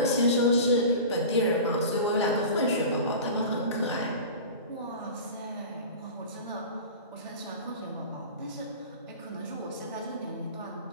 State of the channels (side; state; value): both; inverted; correlation -0.34